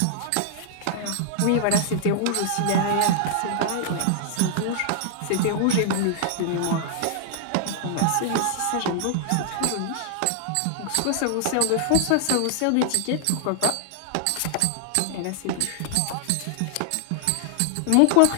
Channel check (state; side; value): different; both; correlation 0.00